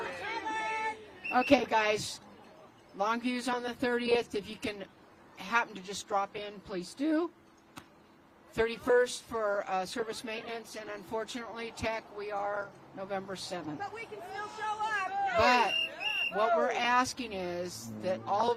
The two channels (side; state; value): both; identical; correlation 1.00